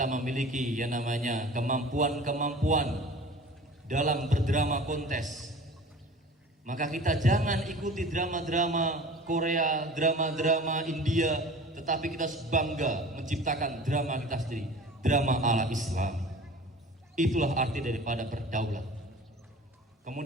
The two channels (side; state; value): both; normal; correlation 0.42